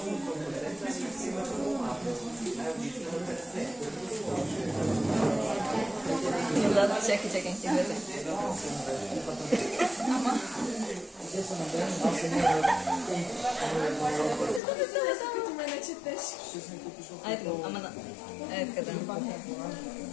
Чакай, ще бъде. Ама. Само като ме не четеш. Ай така, ама да. Ай така да.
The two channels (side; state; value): right; drops out; at 14.6 s